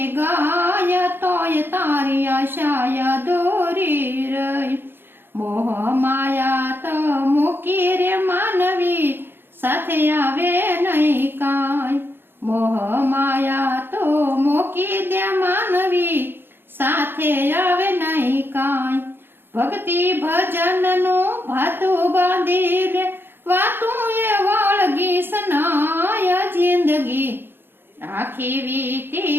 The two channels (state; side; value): late; left; 0.10 ms